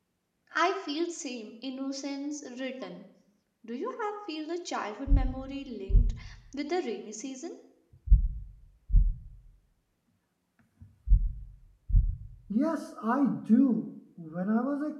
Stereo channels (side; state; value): both; identical; correlation 1.00